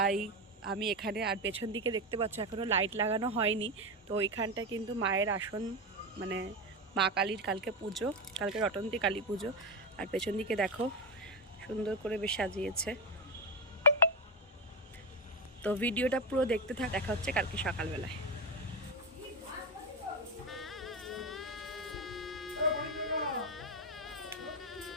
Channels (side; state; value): both; normal; correlation 0.13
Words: আমি এখানে। আর পেছন দিকে দেখতে পাচ্ছ এখনও লাইট লাগানো হয়নি। তো ওইখানটা কিন্তু মায়ের আসন, মানে মা কালীর কালকে পুজো, কালকে রটন্তী কালী পুজো। আর পেছন দিকে দেখো সুন্দর করে বেশ সাজিয়েছে। তো ভিডিওটা পুরো দেখতে দেখা হচ্ছে কালকে সকালবেলায়।